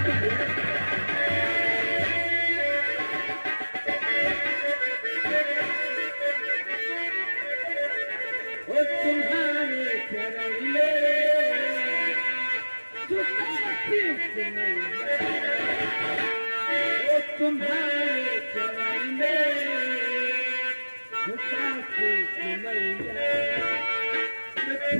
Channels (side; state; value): both; inverted; correlation -1.00